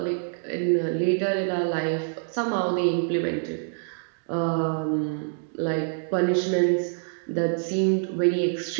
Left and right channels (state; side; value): silent; left; digital silence